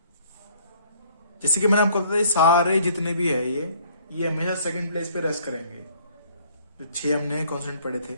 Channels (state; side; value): inverted; both; correlation -0.60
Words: जैसे कि मैंने आपको बताया, सारे जितने भी है ये हमेशा सेकंड प्लेस पे रेस्ट करेंगे। जो 6 हमने कॉन्सोनेंट पढ़े थे,